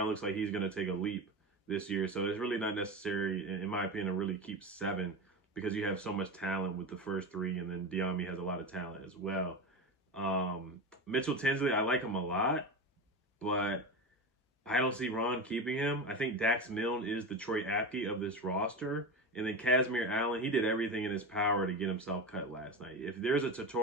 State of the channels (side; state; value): both; normal; correlation 0.22